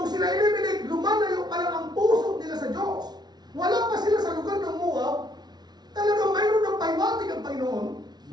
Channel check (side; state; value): left; late; 0.20 ms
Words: sila Elimelech, lumalayo pa lang ang puso nila sa Diyos. Wala pa sila sa lugar ng Moab. Talagang mayroon ng paiwatig ang Panginoon.